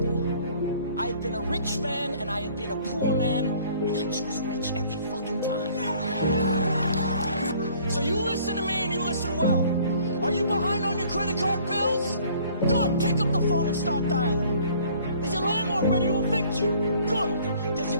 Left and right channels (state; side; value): inverted; both; correlation -0.56